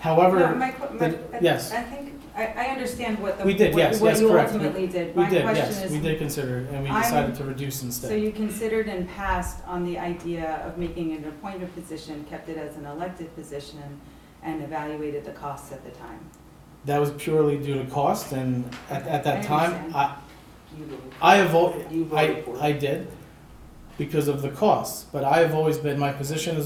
No, yes. I think, I understand what the. We did, yes, what yes, you correct. ultimately did. We My did, question yes, is, we did consider it, and we I'm- decided to reduce So instead. you considered and passed on the idea of making it an appointed position, kept it as an elected position, and evaluated the costs at the time? That was purely due to cost, and at that I time, understand. You voted I have, you voted for it. I did, because of the costs, but I have always been, my position has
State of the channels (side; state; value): both; identical; correlation 1.00